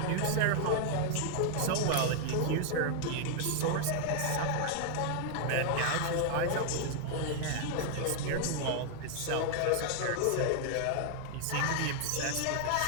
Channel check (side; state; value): both; different; correlation 0.00